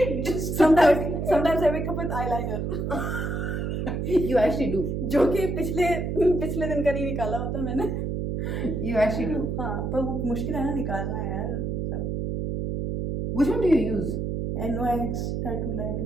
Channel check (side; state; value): right; noise; hum, 2 dB below the sound